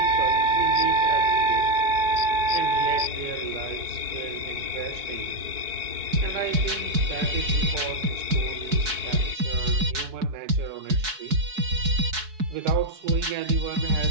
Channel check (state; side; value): late; left; 4.7 ms